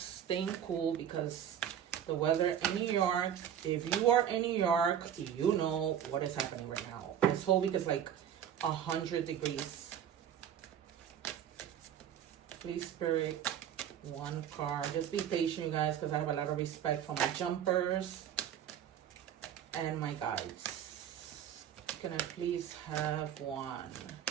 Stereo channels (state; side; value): quieter; left; 9.6 dB